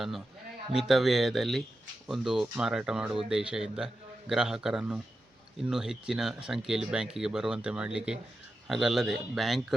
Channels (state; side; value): normal; both; correlation 0.90